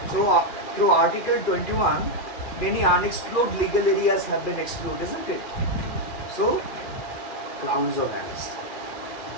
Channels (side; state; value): right; late; 2.4 ms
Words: So through Article 21, many unexplored legal areas have been explored, isn't it? So, grounds of arrest.